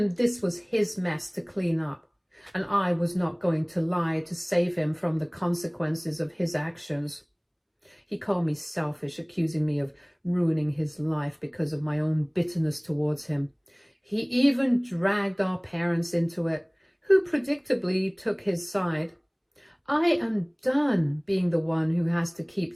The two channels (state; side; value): identical; both; correlation 1.00